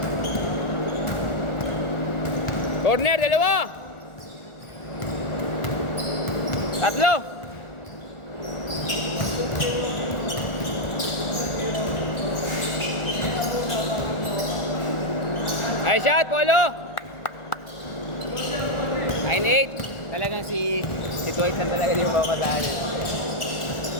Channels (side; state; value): right; late; 1.4 ms